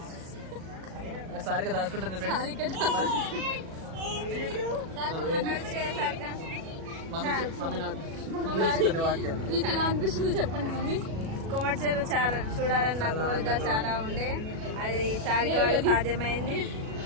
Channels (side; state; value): left; late; 37 ms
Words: సారిక దాచుకుంటుంది. మీకు ఎలా అనిపిస్తుంది చెప్పండి మమ్మీ. కొమర్చెరు చాలా చూడాలని నా కోరిక చాలా ఉండే, అది సారిక వల్ల సాధ్యమైంది.